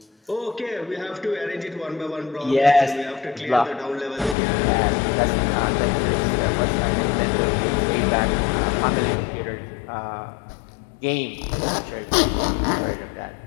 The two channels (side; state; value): right; drops out; at 4.4 s